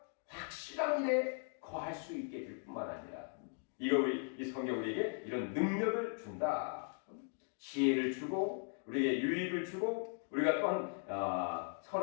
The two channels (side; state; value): right; silent; 52 dB below the other